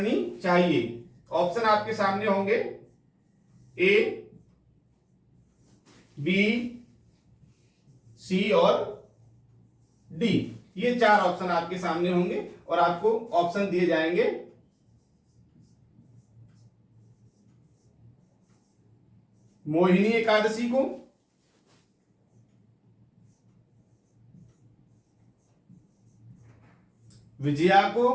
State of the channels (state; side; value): identical; both; correlation 1.00